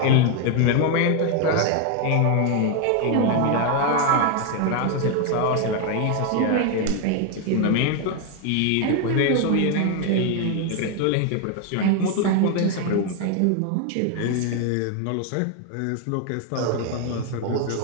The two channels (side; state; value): both; different; correlation 0.01